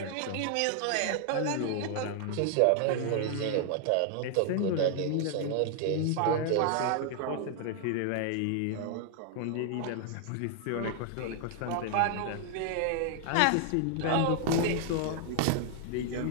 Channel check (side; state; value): both; different; correlation 0.00